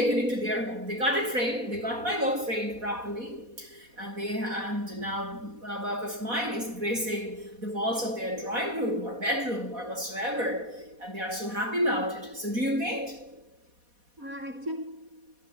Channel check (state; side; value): late; left; 4.1 ms